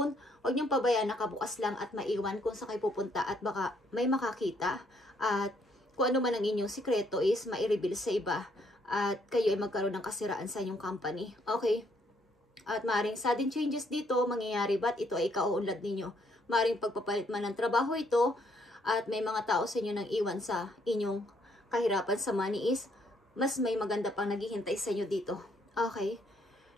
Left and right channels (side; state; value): both; normal; correlation 0.70